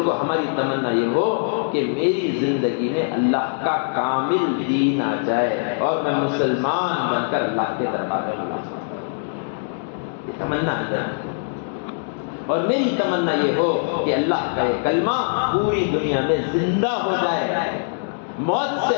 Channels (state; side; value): silent; right; digital silence